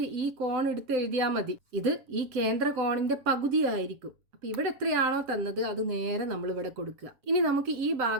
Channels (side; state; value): left; late; 7.3 ms